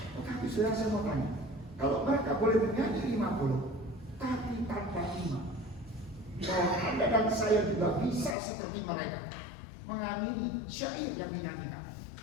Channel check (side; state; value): right; drops out; at 8.3 s